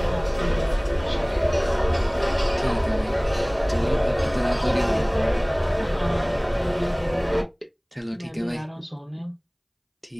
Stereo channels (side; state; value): both; identical; correlation 1.00